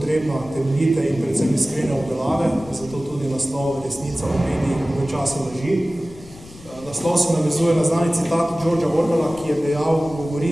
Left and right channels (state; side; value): noise; left; rumble, 20 dB below the sound